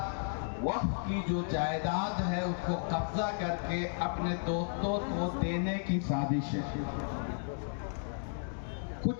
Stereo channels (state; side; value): silent; right; digital silence